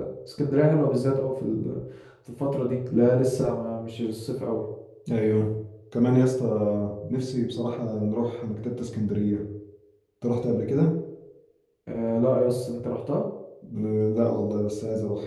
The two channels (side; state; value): both; identical; correlation 1.00